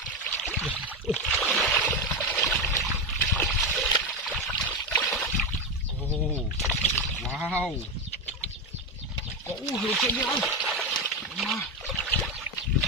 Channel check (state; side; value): normal; both; correlation 0.13